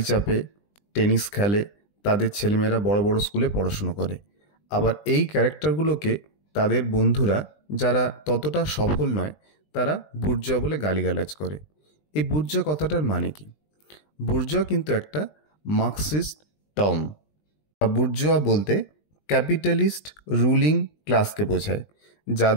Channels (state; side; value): late; right; 20 ms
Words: চাপে, টেনিস খেলে, তাদের ছেলেমেয়েরা বড় বড় স্কুলে পড়াশুনো করে। আবার এই ক্যারেক্টারগুলোকে তাদের বন্ধুরা যারা ততটা সফল নয় তারা বুর্জোয়া বলে গালিগালাজ করে। এই বুর্জোয়া কথাটার মানে কি? বুর্জোয়া কিন্তু একটা মার্কসিস্ট টার্ম। বুর্জোয়া বলতে ক্যাপিটালিস্ট রুলিং ক্লাসকে বোঝায়,